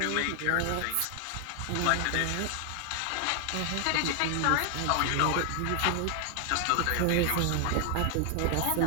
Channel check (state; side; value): different; both; correlation 0.00